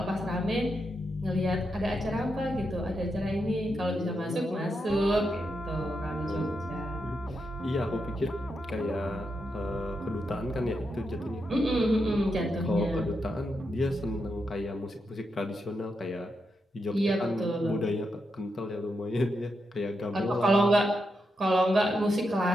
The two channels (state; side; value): normal; both; correlation 0.84